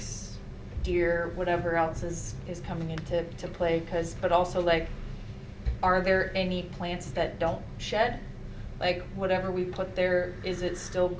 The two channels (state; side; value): identical; both; correlation 1.00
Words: deer, whatever else is coming into play, but also are there any plants that don't shed? Like whatever we put there, is it still